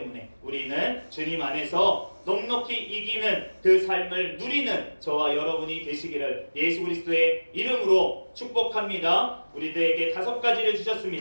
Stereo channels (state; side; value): inverted; both; correlation -1.00